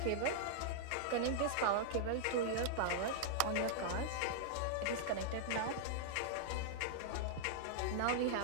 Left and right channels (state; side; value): different; both; correlation -0.01